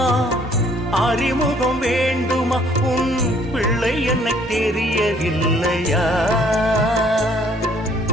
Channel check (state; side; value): normal; both; correlation 0.61